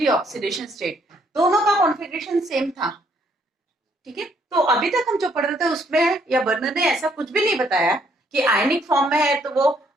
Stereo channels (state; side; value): normal; both; correlation 0.68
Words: oxidation state. दोनों का कॉन्फ़िगरेशन सेम था. ठीक है, तो अभी तक हम जो पढ़ रहे थे उसमें या बर्नर ने ऐसा कुछ भी नहीं बताया कि आयनिक फॉर्म में है तो वो